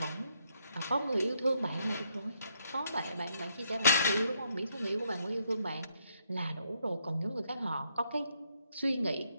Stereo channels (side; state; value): both; inverted; correlation -0.74